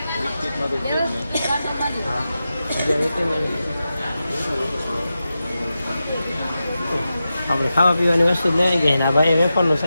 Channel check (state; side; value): inverted; both; correlation -0.91